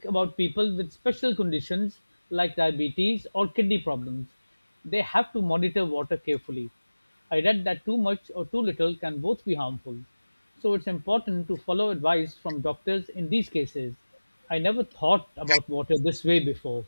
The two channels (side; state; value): both; inverted; correlation -1.00